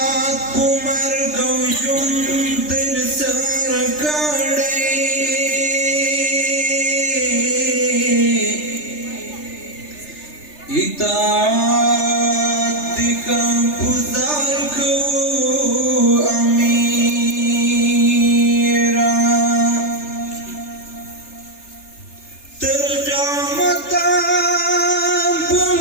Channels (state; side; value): late; right; 3.3 ms